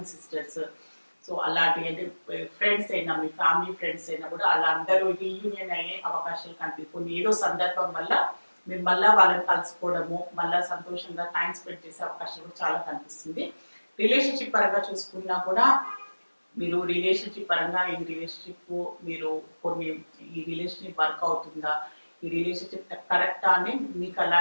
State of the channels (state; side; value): inverted; both; correlation -1.00